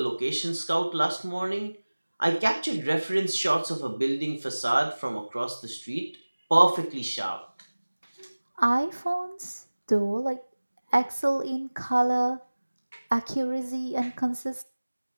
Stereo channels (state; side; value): inverted; both; correlation -1.00